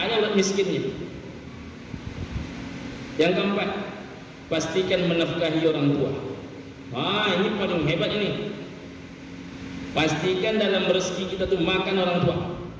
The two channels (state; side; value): identical; both; correlation 1.00